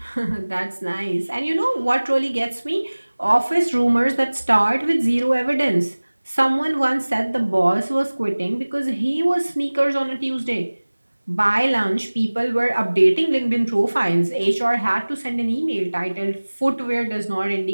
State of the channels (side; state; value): both; inverted; correlation -1.00